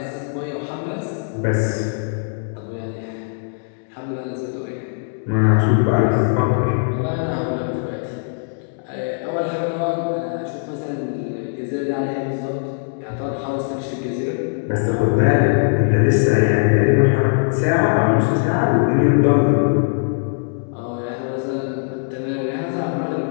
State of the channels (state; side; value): silent; right; digital silence